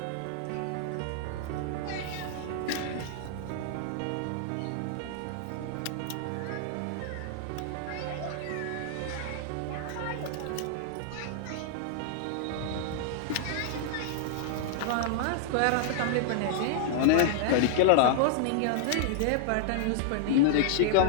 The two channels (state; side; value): different; both; correlation -0.01